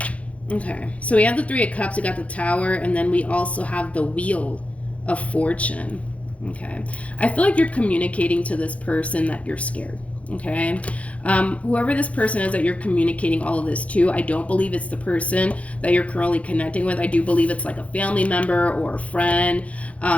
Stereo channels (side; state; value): right; late; 0.065 ms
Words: Okay, so we have the Three of Cups, we got the Tower, and then we also have the Wheel of Fortune. Okay, I feel like you're communicating to this person that you're scared. Okay, whoever this person is that you're communicating all of this to, I don't believe it's the person that you're currently connecting with. I do believe it's like a family member or a friend,